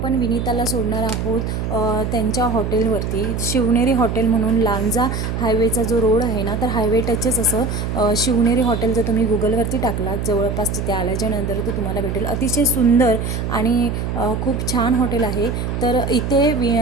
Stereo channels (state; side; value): noise; right; hum, 3 dB below the sound